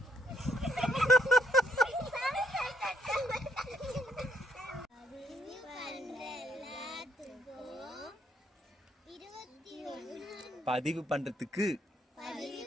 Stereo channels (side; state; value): both; normal; correlation 0.69